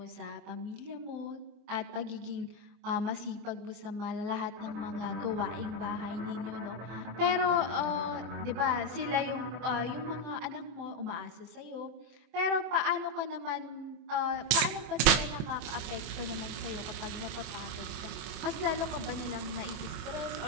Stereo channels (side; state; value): left; late; 25 ms